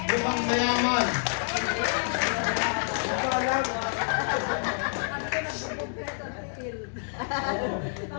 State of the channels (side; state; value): right; silent; digital silence